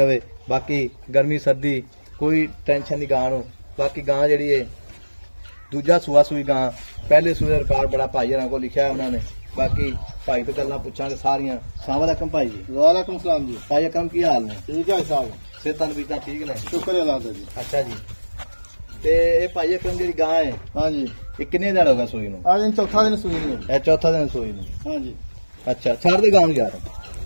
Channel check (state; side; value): inverted; both; correlation -1.00